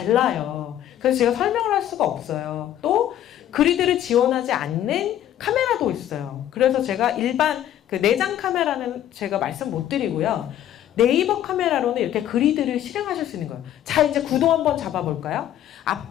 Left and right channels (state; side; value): quieter; right; 11.6 dB